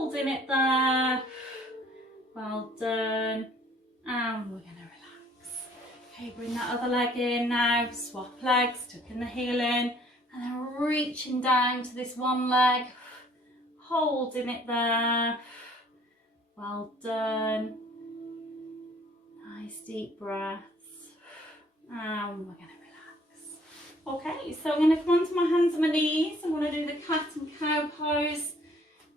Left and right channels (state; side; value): normal; both; correlation 0.58